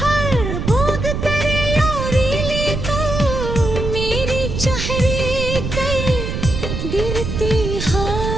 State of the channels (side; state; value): right; noise; rumble, 3 dB below the sound